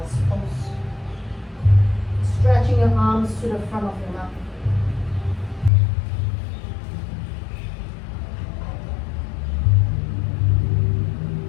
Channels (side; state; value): right; drops out; at 5.7 s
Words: pose. Stretching your arms to the front of your mat.